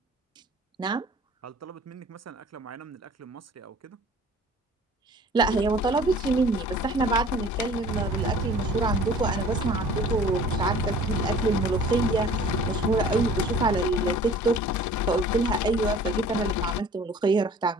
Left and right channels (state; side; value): normal; both; correlation 0.48